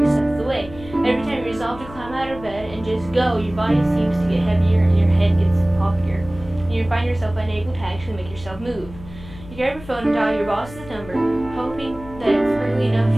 step of the way. Every time you resolve to climb out of bed and just go, your body seems to get heavier and your head gets poppier. And you find yourself unable to actually make yourself move. You grab your phone and dial your boss's number, hoping that it's early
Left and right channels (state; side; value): noise; left; hum, 16 dB below the sound